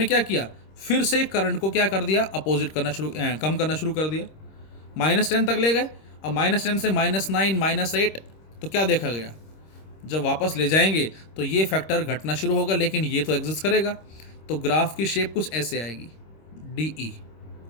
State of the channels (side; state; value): right; late; 26 ms